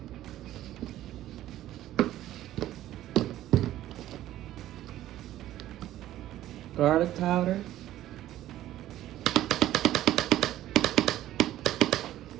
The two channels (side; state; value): left; quieter; 13.7 dB